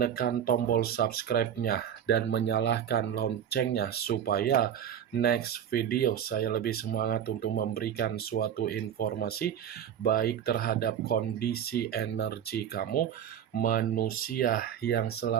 tombol subscribe-nya dan menyalakan loncengnya supaya next video saya lebih semangat untuk memberikan suatu informasi baik terhadap kondisi energi kamu, manusia yang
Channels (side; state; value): left; quieter; 9.4 dB